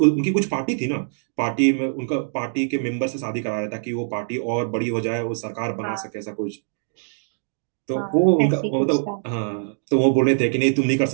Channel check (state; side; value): silent; left; digital silence